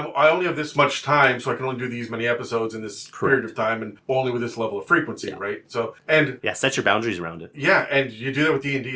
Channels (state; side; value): identical; both; correlation 1.00